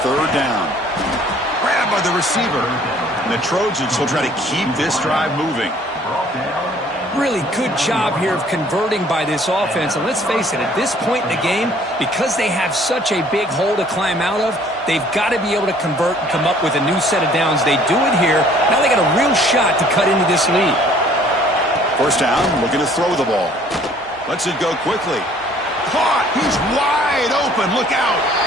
3rd down. Grabbed by the receiver. And the Trojans will try to keep this drive moving. Really good job here of converting by this offense. And let's face it, at this point in the game, because they have such a big hole to climb out of, they've got to be able to convert and come up with a new set of downs. They do it here. Now they got a real shot to cut into this lead. 1st down, looking to throw the ball. Lets it go quickly. Caught. He's wide open. Look out.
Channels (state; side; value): normal; both; correlation 0.57